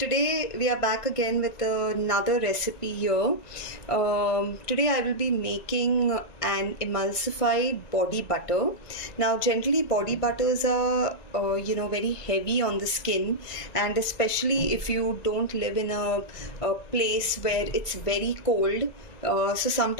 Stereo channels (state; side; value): late; right; 1.9 ms